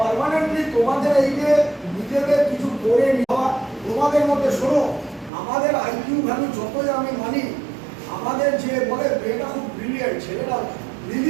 পার্মানেন্টলি তোমাদের এই যে নিজেদের কিছু করে নেওয়া, তোমাদের মধ্যে শোনো, আমাদের আইকিউ ভ্যালু যতই আমি মানি, আমাদের যে বলে মেয়েটা খুব ব্রিলিয়েন্ট, ছেলেটা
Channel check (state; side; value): drops out; left; at 5.3 s